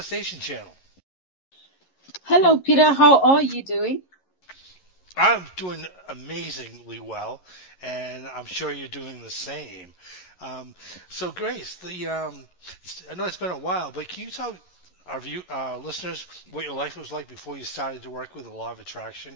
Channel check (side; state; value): right; late; 11 ms